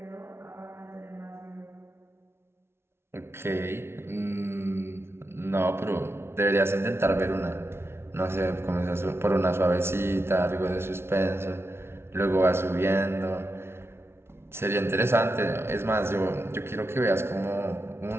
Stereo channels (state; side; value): late; left; 0.12 ms